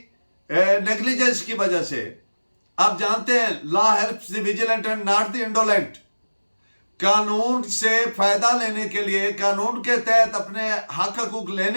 नेग्लिजेंस की वजह से, आप जानते हैं law helps the vigilant and not the indolent. कानून से फायदा लेने के लिए, कानून के तहत अपने हक हकूक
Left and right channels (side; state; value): both; inverted; correlation -1.00